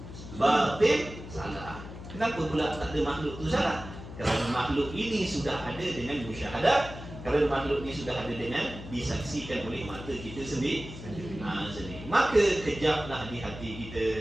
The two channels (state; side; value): noise; left; hum, 12 dB below the sound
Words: batil, salah. Kenapa pula tak ada makhluk tu salah? Kerana makhluk ini sudah ada dengan musyahadah. Kerana makhluk ini sudah ada dengan disaksikan oleh mata kita sendiri. Maka kejaplah di hati